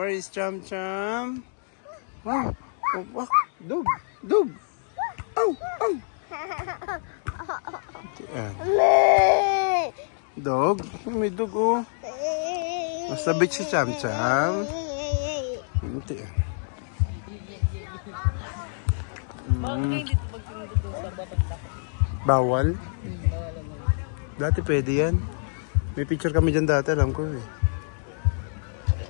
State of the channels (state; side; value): silent; right; digital silence